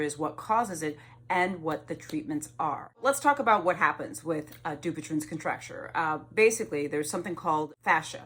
what causes it, and what the treatments are. Let's talk about what happens with DUPUTRYEN'S contracture. Basically, there's something called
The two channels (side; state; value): both; identical; correlation 1.00